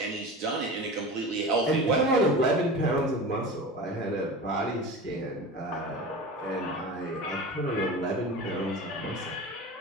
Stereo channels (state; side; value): normal; both; correlation 0.32